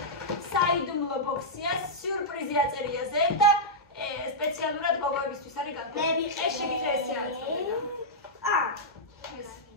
საიდუმლო ბოქსია, სიურპრიზი აწერია ზე და სპეციალურად გოგოებისთვის არის განკუთვნილი. ეს შეგიძლია ესე აწოდე.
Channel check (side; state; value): both; normal; correlation -0.09